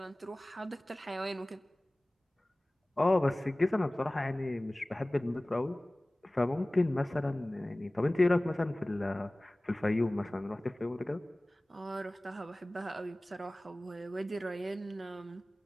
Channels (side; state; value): both; normal; correlation 0.98